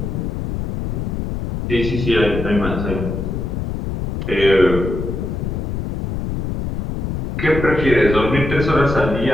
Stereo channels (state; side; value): noise; left; rumble, 3 dB below the sound